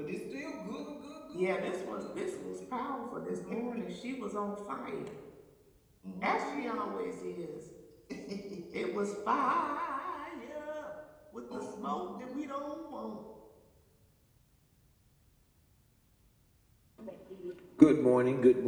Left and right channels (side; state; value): both; identical; correlation 1.00